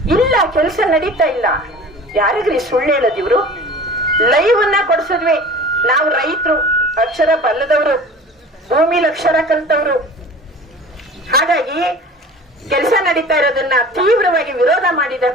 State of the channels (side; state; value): both; normal; correlation 0.41